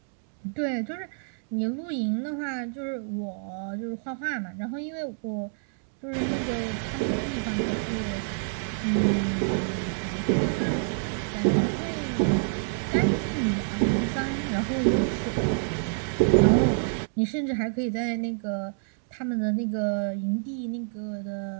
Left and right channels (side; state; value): left; silent; digital silence